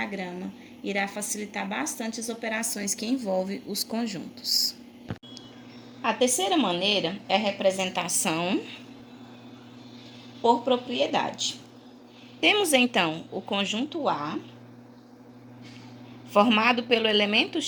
irá facilitar bastante as operações que envolvem os conjuntos. A terceira maneira é a representação por propriedade. Temos então o conjunto A, formado pelo elemento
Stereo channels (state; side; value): identical; both; correlation 1.00